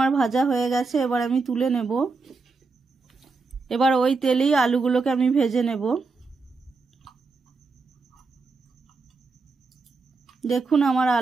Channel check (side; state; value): left; quieter; 4.1 dB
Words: ভাজা হয়ে গেছে, এবার আমি তুলে নেব। এবার ওই তেলেই আলুগুলোকে আমি ভেজে নেব। দেখুন আমার